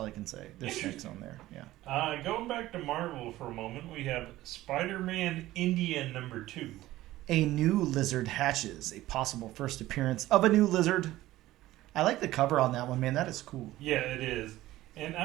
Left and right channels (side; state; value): left; quieter; 16.1 dB